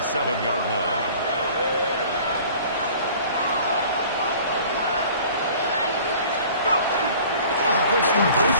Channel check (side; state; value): both; inverted; correlation -0.48